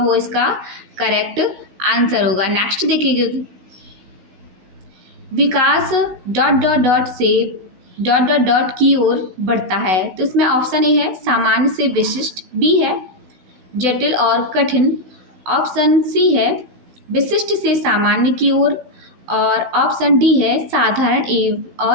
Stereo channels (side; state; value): left; late; 15 ms